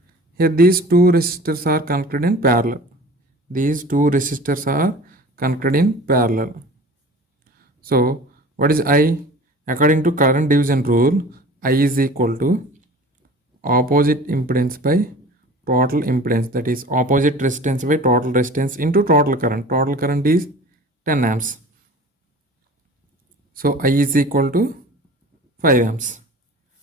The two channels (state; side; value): normal; both; correlation 0.41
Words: Here these two resistors are connected in parallel. These two resistors are connected in parallel. So what is I? According to current division rule, I is equal to opposite impedance by total impedance, that is opposite resistance by total resistance into total current. Total current is 10 amps. So I is equal to 5 amps.